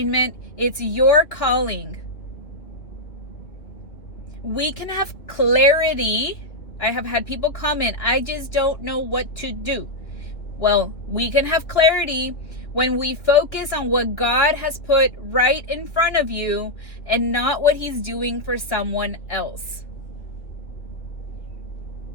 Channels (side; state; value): right; late; 2.6 ms